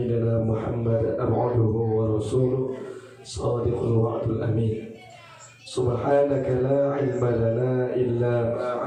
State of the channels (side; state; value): both; identical; correlation 1.00